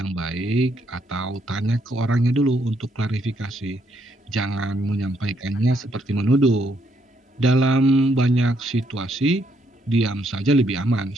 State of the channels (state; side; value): normal; both; correlation 0.73